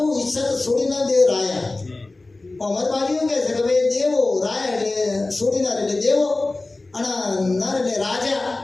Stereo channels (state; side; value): quieter; right; 3.1 dB